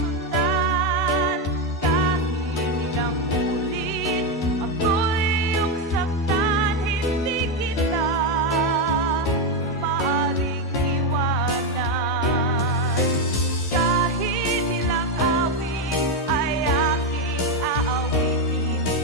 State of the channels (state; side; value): normal; both; correlation 0.08